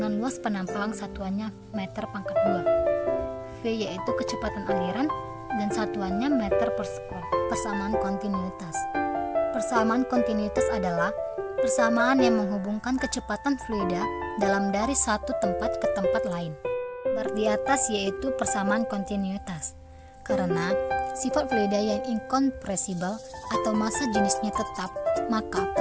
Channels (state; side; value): identical; both; correlation 1.00